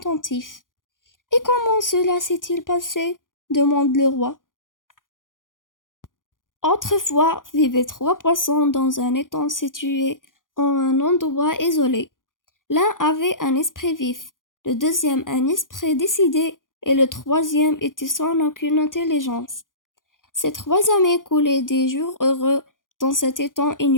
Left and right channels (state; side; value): late; right; 0.89 ms